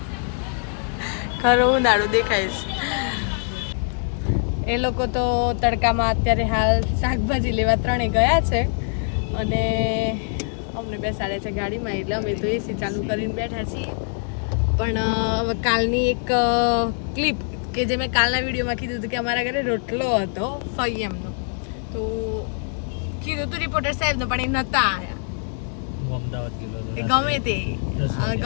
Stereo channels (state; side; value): silent; right; 57 dB below the other